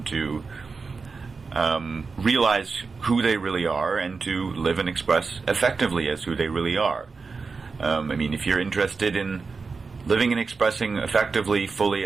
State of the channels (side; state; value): left; quieter; 4.6 dB